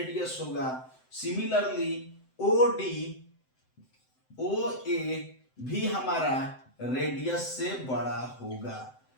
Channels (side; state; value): right; late; 7.8 ms